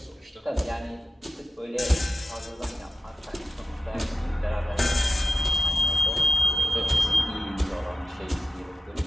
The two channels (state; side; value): normal; both; correlation 0.92